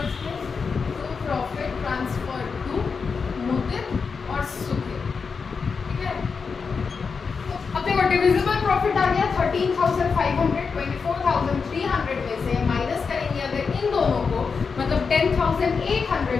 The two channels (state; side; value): quieter; right; 5.3 dB